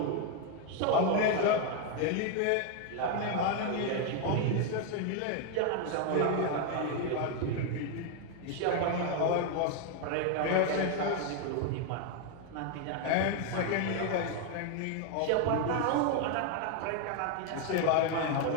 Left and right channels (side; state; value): both; different; correlation 0.01